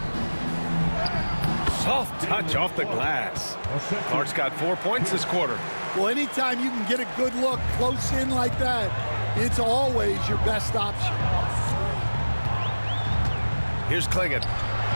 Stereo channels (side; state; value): both; inverted; correlation -1.00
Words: Soft touch off the glass. Clark's got 4 points this quarter. Well, anytime you can get a good look close in like that, it's always your best option. Here's Clingan.